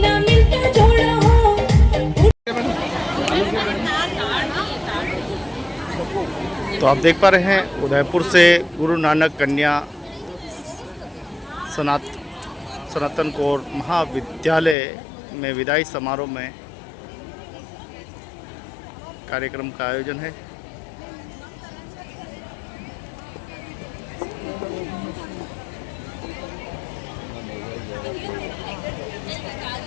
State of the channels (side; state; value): right; drops out; at 14.8 s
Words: तो आप देख पा रहे हैं उदयपुर से गुरु नानक कन्या सनातन कौर महाविद्यालय में विदाई समारोह में कार्यक्रम का आयोजन है।